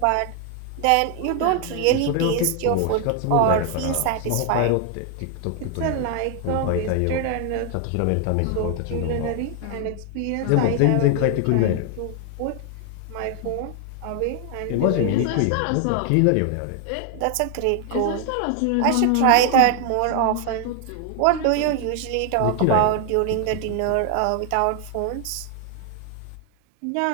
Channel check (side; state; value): both; different; correlation 0.00